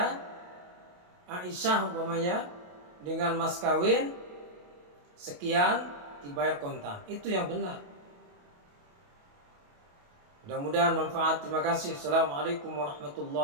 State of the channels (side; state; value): left; late; 28 ms